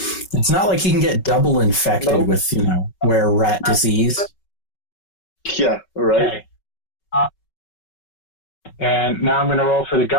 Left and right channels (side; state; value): right; late; 5.3 ms